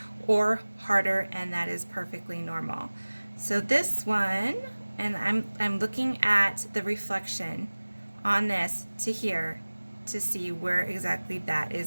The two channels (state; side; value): inverted; both; correlation -1.00